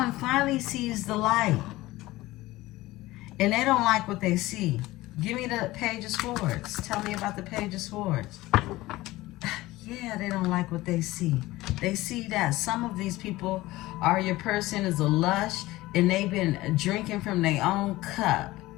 finally sees the light, and they don't like what they see. Give me the Page of Swords. Tell me about the Page of Swords. Yeah, they don't like what they see. They see that some of these people are, your person is a lush, and they've been drinking from their own cup.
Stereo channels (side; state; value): right; quieter; 18.3 dB